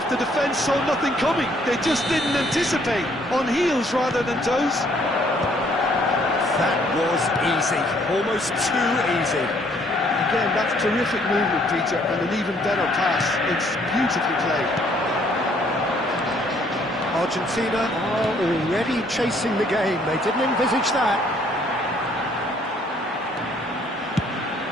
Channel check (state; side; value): normal; both; correlation 0.64